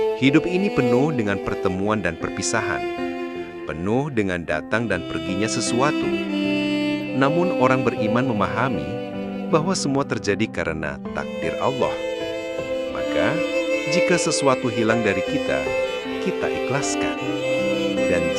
Hidup ini penuh dengan pertemuan dan perpisahan, penuh dengan datang dan perginya sesuatu. Namun orang beriman memahami bahwa semua terjadi karena takdir Allah. Maka, jika sesuatu hilang dari kita, kita ikhlaskan. Dan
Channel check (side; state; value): both; identical; correlation 1.00